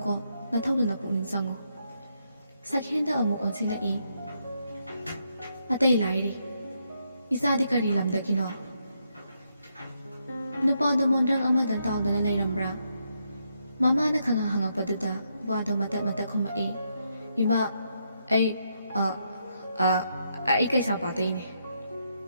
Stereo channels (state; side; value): inverted; both; correlation -0.79